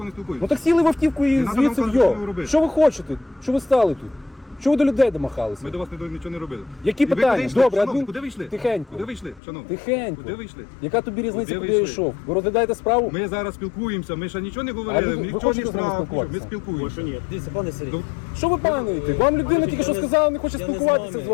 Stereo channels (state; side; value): drops out; right; at 9.4 s